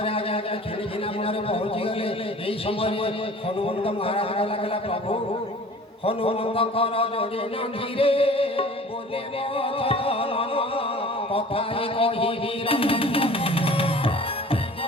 ଆଜ୍ଞା ଖେଳି ଘିନା ମୂଳରେ ପହଞ୍ଚିଗଲେ। ଏହି ସମୟରେ ହନୁମନ୍ତ ମହାରାଜ ଲାଗିଲା, ପ୍ରଭୁ ହନୁମନ୍ତଙ୍କର ଯୋଡ଼ି ନାଧିରେ କଥା କହିବି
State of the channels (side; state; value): both; normal; correlation 0.45